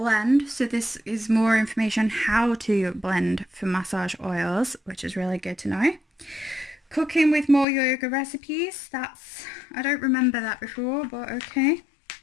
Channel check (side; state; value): right; drops out; at 7.7 s